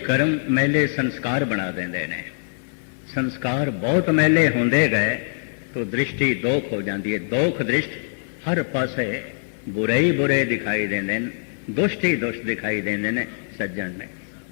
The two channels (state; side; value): silent; right; digital silence